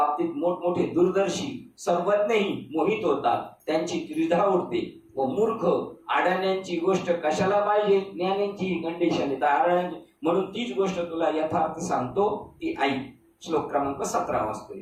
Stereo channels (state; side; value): identical; both; correlation 1.00